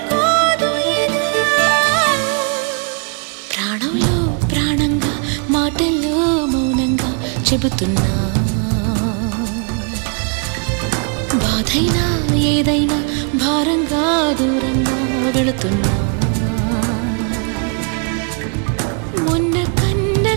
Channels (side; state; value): left; quieter; 39.5 dB